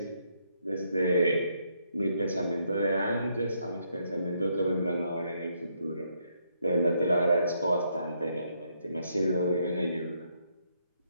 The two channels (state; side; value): inverted; both; correlation -0.74